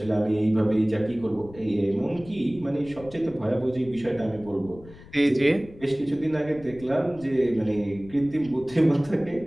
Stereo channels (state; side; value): noise; left; rumble, 20 dB below the sound